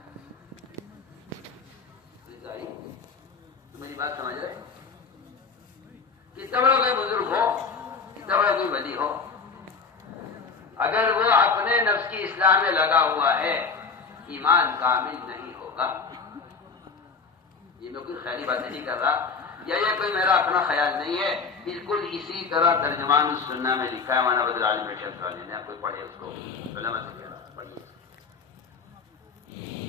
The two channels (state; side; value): quieter; right; 5.1 dB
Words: میری بات سمجھ رہے کتنا بڑا کوئی بزرگ ہو کتنا بڑا کوئی ولی ہو اگر وہ اپنے نفس کی اصلاح میں لگا ہوا ہے ایمان کامل نہیں ہوگا. یہ میں کوئی خیالی باتیں نہیں کر رہا یا یہ کوئی میرا اپنا خیال نہیں ہے. بالکل اسی طرح ترجمان السنہ میں لکھا ہے وانا بدر عالم شمس والے نے. آپ کوئی پڑھے اس کو علماء سے کہہ رہا پڑھیے.